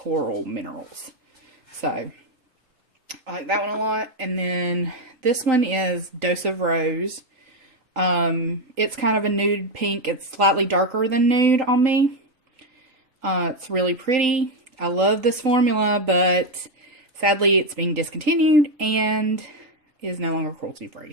Minerals. So I like that one a lot. And then this one is Dose of Rose. It's kind of a nude pink. It's slightly darker than nude on me. It's really pretty. I love this formula, but sadly it's being discontinued and is no longer cruelty free.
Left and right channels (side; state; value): left; late; 3.8 ms